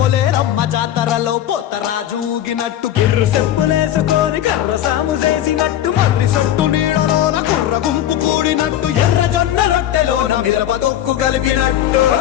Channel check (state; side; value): quieter; right; 11.7 dB